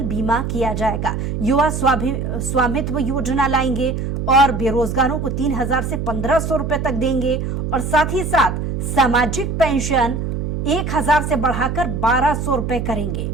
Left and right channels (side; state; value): right; noise; hum, 3 dB below the sound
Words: बीमा किया जाएगा। युवा स्वामित्व योजना लाएंगे और बेरोजगारों को 3000 से 1500 रुपए तक देंगे। और साथ ही साथ सामाजिक पेंशन 1000 से बढ़ाकर 1200 रुपए करेंगे।